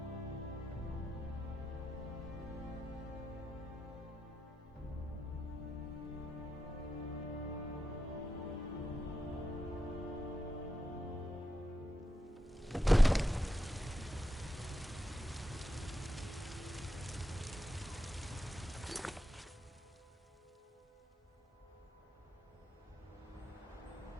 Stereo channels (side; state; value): both; normal; correlation 0.87